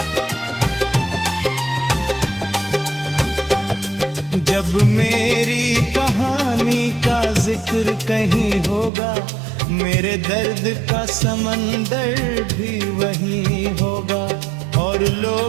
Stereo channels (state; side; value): drops out; left; at 8.9 s